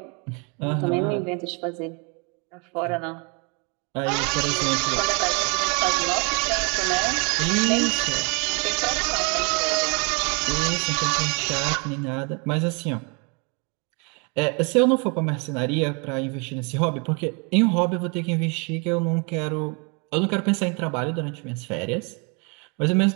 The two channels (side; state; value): left; quieter; 33.5 dB